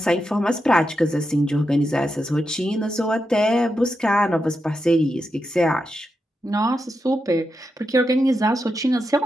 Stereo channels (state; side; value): normal; both; correlation 0.87